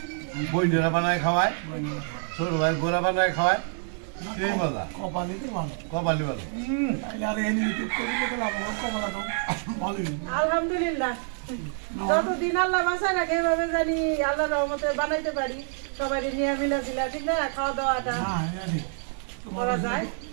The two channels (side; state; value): left; silent; 60 dB below the other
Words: বইনেরা বানায় খাওয়ায় ছোট ভাই গোড়া বানায় খাওয়ায় সেই মজা কপালি ভালো আলহামদুলিল্লাহ যতদিন আল্লাহ বাঁচায় রাখে এভাবে জানি আল্লাহ রহমতে বানাইতে পারি সবাই নিয়ে মিলা দিলা ঠিক না খাওয়া দাওয়াটা করা যায়